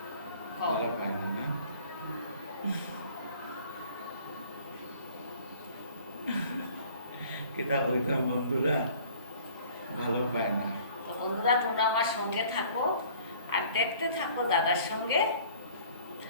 ভালো পায় না না? কিতাব হইতাম বন্ধুরা, ভালো পায় না। তো বন্ধুরা তোমরা আমার সঙ্গে থাকো আর দেখতে থাকো দাদার সঙ্গে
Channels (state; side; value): inverted; both; correlation -0.52